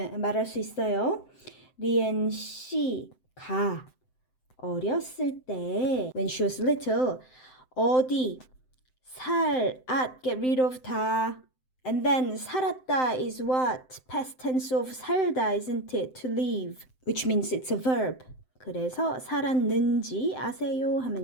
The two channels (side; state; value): right; late; 7.8 ms